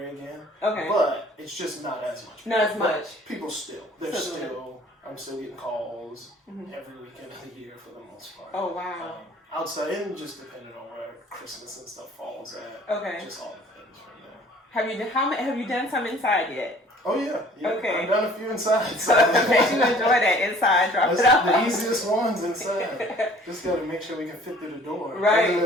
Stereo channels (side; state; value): both; normal; correlation 0.52